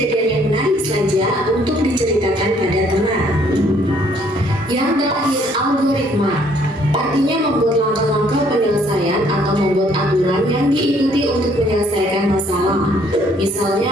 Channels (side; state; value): both; normal; correlation 0.63